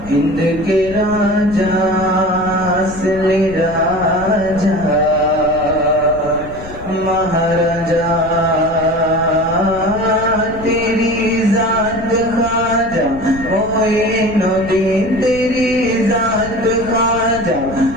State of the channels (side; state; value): left; noise; rumble, 14 dB below the sound